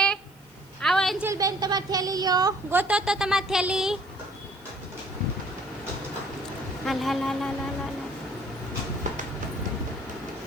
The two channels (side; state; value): left; noise; hiss, 27 dB below the sound